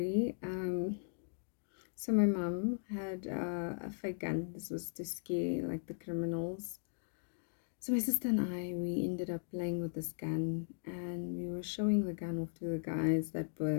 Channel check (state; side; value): silent; right; digital silence